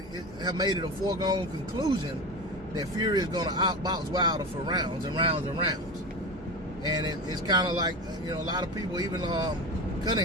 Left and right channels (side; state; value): both; normal; correlation 0.25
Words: made it a foregone conclusion that Fury is going to outbox Wilder for rounds and rounds and rounds. And it's kind of like, you know, a lot of people, even